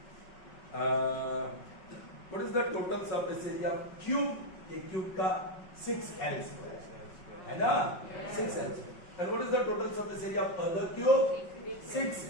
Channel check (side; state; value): right; late; 5.4 ms